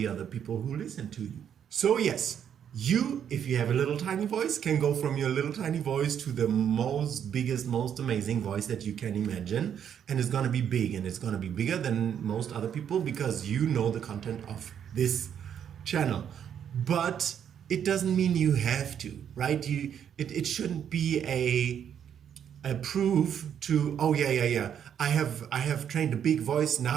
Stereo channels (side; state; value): left; quieter; 8.8 dB